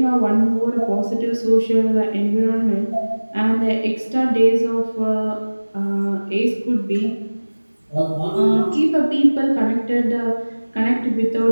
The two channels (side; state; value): both; inverted; correlation -1.00